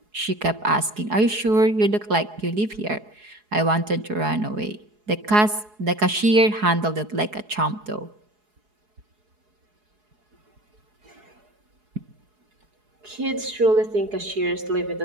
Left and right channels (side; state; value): left; late; 4.7 ms